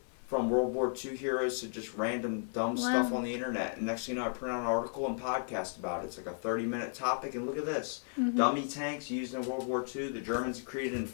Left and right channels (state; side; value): silent; right; 55 dB below the other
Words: From World War II heroes to just random dumb stuff on the internet. And next thing you know, I print out an article and podcast about it. It's like a 30-minute topic. And look at this. Dummy tanks used in World War II. The Germans created